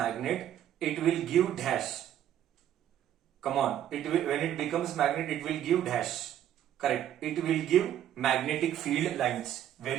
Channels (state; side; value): quieter; left; 11.0 dB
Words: it will give dash. Come on. When it becomes magnet, it will give dash. Correct. It will give magnetic field lines.